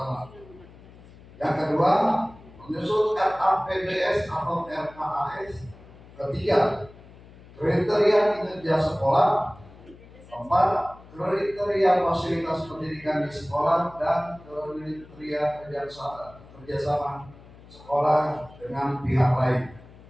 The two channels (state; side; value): noise; left; hum, 21 dB below the sound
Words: Yang kedua, menyusun RAPBS atau RKAS. Ketiga, kriteria kinerja sekolah. Keempat, kriteria fasilitas pendidikan di sekolah dan kriteria kerjasama sekolah dengan pihak lain.